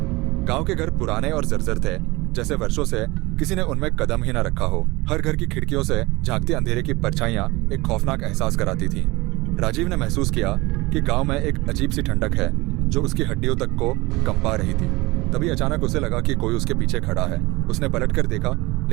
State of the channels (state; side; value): quieter; left; 22.0 dB